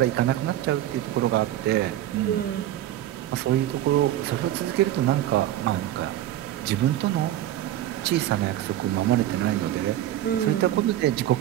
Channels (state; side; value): quieter; left; 13.0 dB